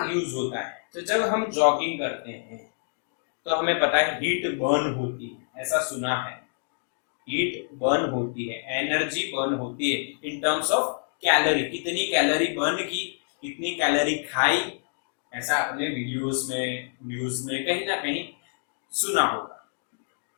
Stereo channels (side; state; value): right; silent; 60 dB below the other